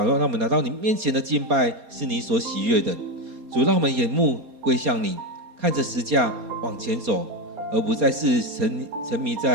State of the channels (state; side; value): late; left; 4.3 ms